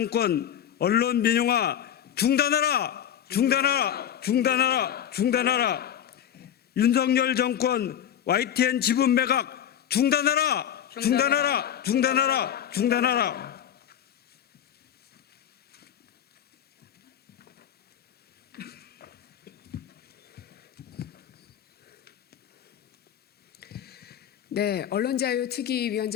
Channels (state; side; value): quieter; right; 9.8 dB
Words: 언론 민영화 중단하라! 중단하라! 중단하라! 중단하라! 윤석열 정권 YTN 지분 매각 중단하라! 중단하라! 중단하라! 중단하라! 네,